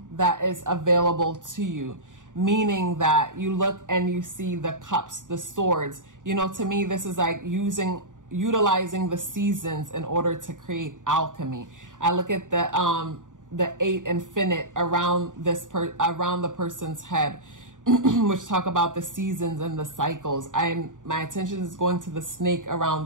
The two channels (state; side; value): late; left; 0.87 ms